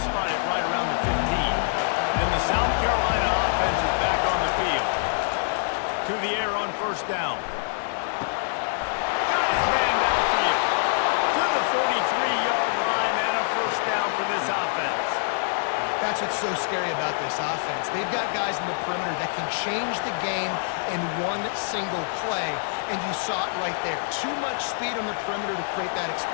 spot it right around the 15. And the South Carolina offense is back on the field. To the air on 1st down. Got his man downfield. To the 43-yard line, and a 1st down for this offense. That's what's so scary about this offense. They've got guys in the perimeter that can change the game in one single play, and you saw it right there. Too much speed on the perimeter to create that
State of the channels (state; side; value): silent; right; digital silence